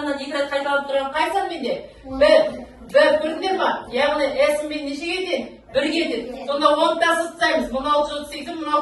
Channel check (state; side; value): identical; both; correlation 1.00